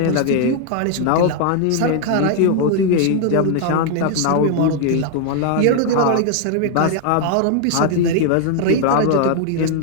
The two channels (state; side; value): different; both; correlation 0.00